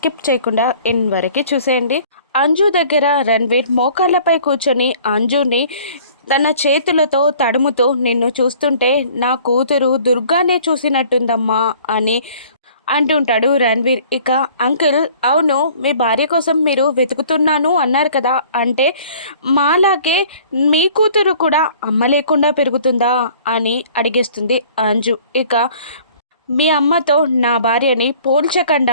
చేయకుండా ఎండ్ వరకు చూసేయండి. అంజు దగ్గర రణ్వీర్ మోకాళ్ళపై కూర్చొని అంజుని తన చేతులతో తడుముతూ, నిన్ను చూస్తుంటే నా కూతురు దుర్గానే చూసినట్టుందమ్మా అని అంటుంటాడు రణ్వీర్. ఇక అంకుల్, అవును మీ భార్య కోసం మీరు వెతుకుతున్నాను అన్నారు కదా, అంటే మాలాగే మీ కూతురు కూడా అమ్మ లేకుండా పెరుగుతుందా అని అడిగేస్తుంది అంజు. ఇక మీ అమ్మతో నా భార్యని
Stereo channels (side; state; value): both; inverted; correlation -0.52